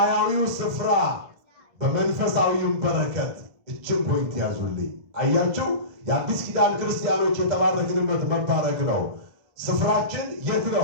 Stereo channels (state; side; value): late; left; 1.5 ms